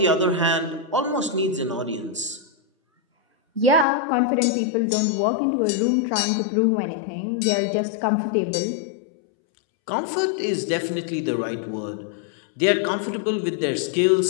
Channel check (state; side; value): drops out; right; at 3.9 s